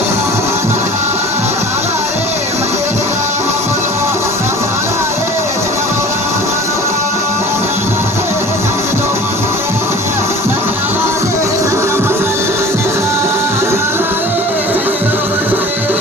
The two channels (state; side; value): normal; both; correlation 0.42